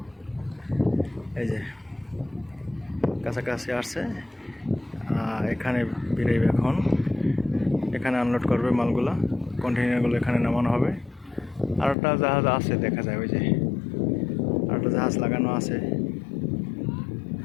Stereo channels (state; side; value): drops out; right; at 12.0 s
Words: এই যে কাছাকাছি আসছে, এখানে বেরোবে এখন। এখানে আনলোড করবে মালগুলো, কন্টেইনারগুলো এখানে নামানো হবে। আর একটা জাহাজ আছে দেখা যায়, ওই যে আর একটা জাহাজ লাগানো আছে,